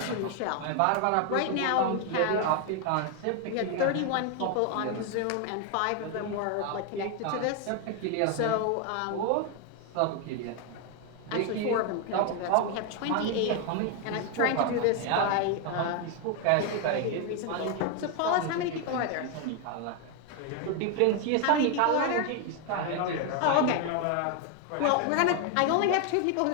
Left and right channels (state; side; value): different; both; correlation 0.01